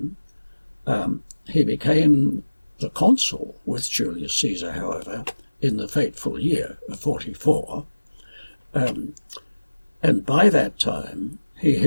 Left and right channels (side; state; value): both; inverted; correlation -1.00